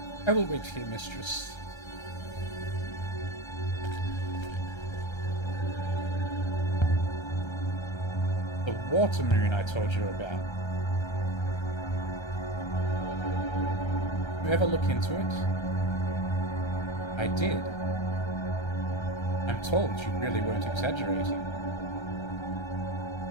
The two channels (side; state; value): right; late; 1.3 ms